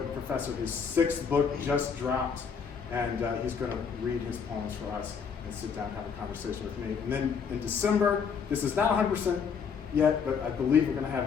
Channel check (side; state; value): right; quieter; 6.4 dB